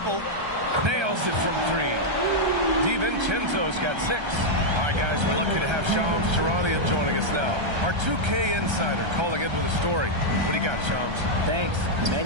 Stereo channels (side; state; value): left; late; 1.3 ms